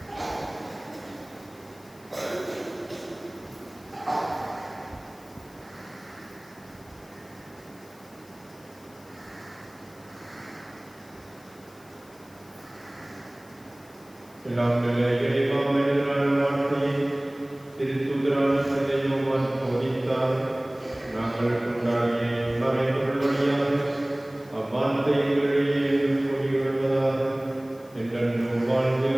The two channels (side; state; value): left; noise; hiss, 26 dB below the sound